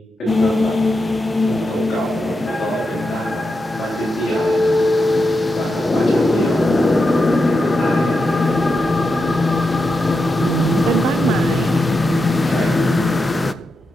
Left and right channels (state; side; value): normal; both; correlation 0.87